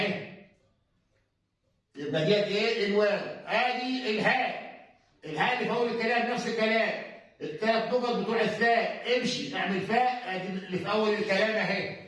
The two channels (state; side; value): identical; both; correlation 1.00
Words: يبقى ديت ايه؟ الواو. ادي الهاء، الهاء اللي في اول الكلام نفس الكلام الثلاث نقط بتوع الثاء امشي اعمل فاء، ادي اللي في اول الكلام